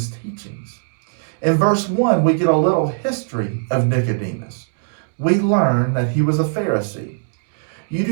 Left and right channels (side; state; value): left; silent; digital silence